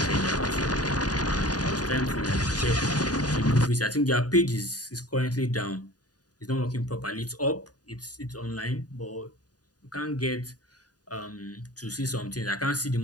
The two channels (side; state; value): right; late; 0.68 ms